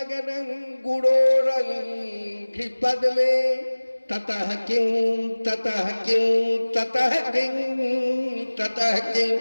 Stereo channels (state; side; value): inverted; both; correlation -1.00